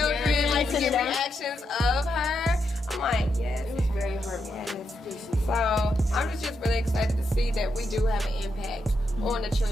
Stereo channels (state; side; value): normal; both; correlation 0.82